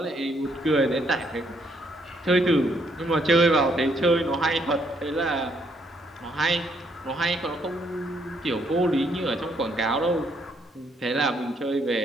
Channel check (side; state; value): both; normal; correlation 0.71